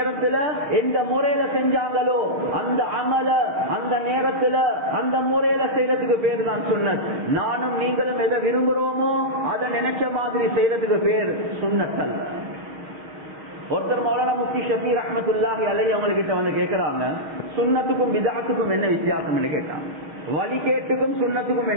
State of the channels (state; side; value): late; left; 6.4 ms